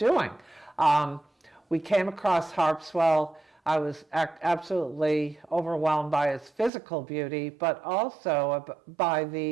We came across Harpswell. I was absolutely overwhelmed by its physical beauty, but also by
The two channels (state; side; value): drops out; left; at 6.7 s